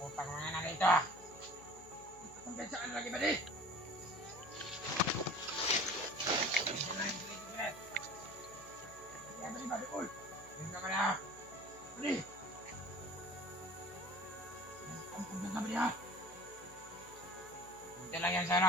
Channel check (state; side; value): noise; left; hum, 23 dB below the sound